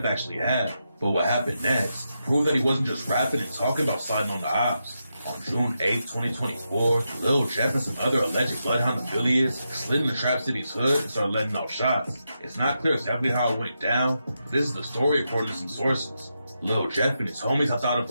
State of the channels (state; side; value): inverted; both; correlation -0.86